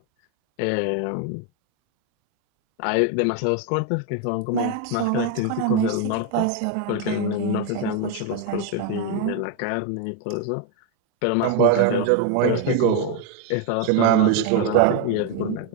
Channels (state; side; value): different; both; correlation 0.02